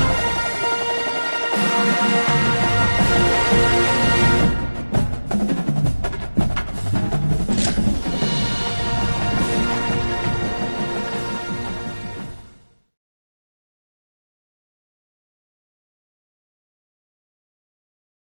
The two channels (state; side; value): inverted; both; correlation -1.00